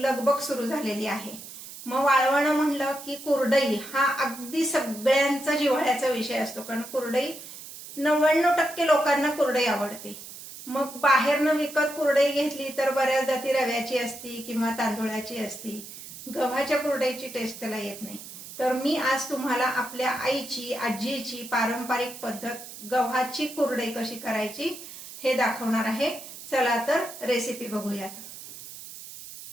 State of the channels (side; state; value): right; noise; hiss, 14 dB below the sound